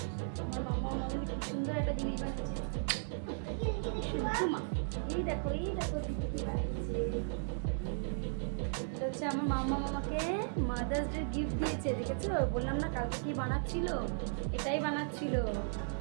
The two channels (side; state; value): left; silent; digital silence